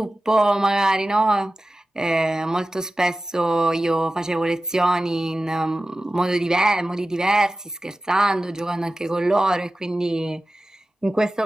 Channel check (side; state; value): both; normal; correlation 0.95